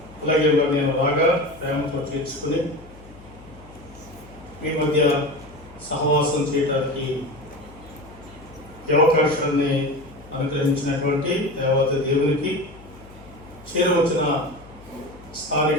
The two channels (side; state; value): left; noise; hum, 21 dB below the sound